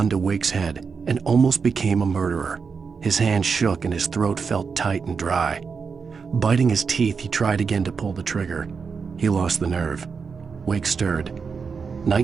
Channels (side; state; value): left; quieter; 5.5 dB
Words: to Wake's head and almost became a murderer. His hand shook and his throat felt tight and dry. Biting his teeth, he tried again to pull the trigger. He lost the nerve. Wake stirred.